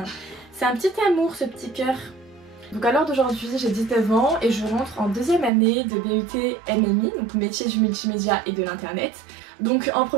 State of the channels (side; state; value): left; drops out; at 5.5 s